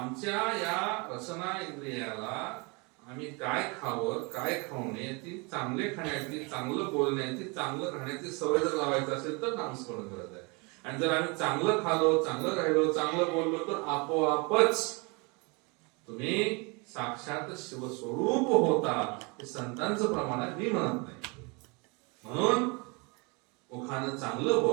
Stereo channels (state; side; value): quieter; left; 29.8 dB